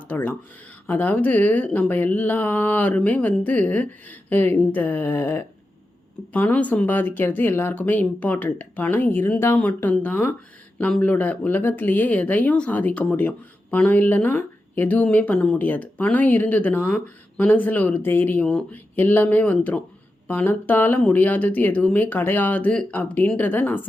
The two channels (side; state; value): both; normal; correlation 0.90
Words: அதாவது நம்ம எல்லாருமே இந்த பணம் சம்பாதிக்கிறது எல்லாருக்குமே இம்பார்ட்டண்ட். பணம் இருந்தால் மட்டும்தான் நம்மளோட உலகத்துலேயே எதையும் சாதிக்க முடியும். பணம் இல்லைன்னா எதுவுமே பண்ண முடியாது. பணம் இருந்ததுன்னா மனசில் ஒரு தைரியம் எல்லாமே வந்துடும். பணத்தால் முடியாதது எதுவுமே கிடையாது அப்படின்றத நான்